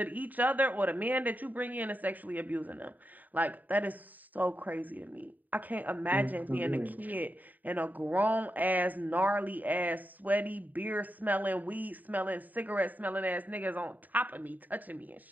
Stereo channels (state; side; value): late; left; 0.084 ms